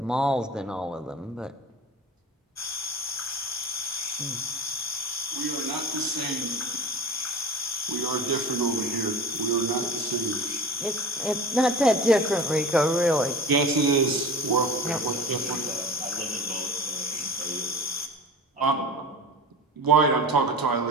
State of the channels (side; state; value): both; normal; correlation 0.34